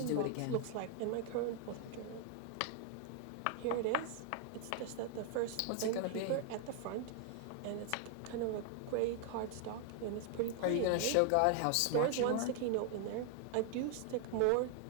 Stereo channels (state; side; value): different; both; correlation 0.00